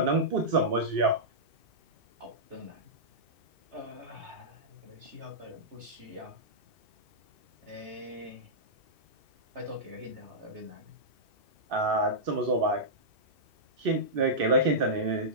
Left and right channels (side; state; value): left; late; 2.6 ms